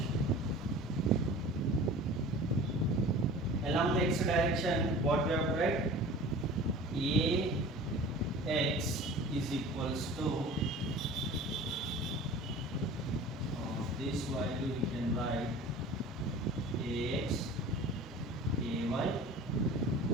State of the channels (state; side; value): normal; both; correlation 0.40